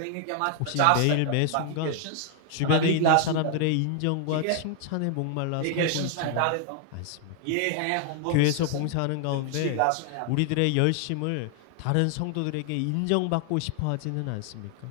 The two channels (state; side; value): different; both; correlation 0.00